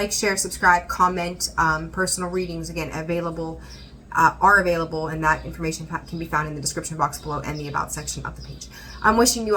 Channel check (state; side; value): identical; both; correlation 1.00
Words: share, subscribe, comment. Personal readings, again, are available, and that information can be found in the description box below and the About section of the page. I'm wishing you